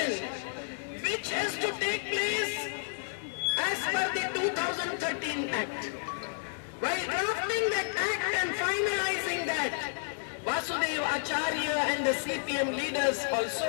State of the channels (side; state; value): right; silent; digital silence